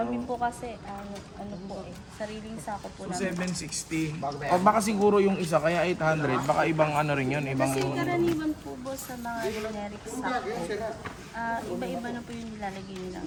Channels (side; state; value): both; identical; correlation 1.00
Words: Kami po kasi, ano po sariling sako po So, namin. 760. O baka siguro yung isa, kaya 800. Baka ibang ano rin yun, ibang... Kasi karaniwan po boss sa mga generic sako, iba-iba na po yung nilalagay nilang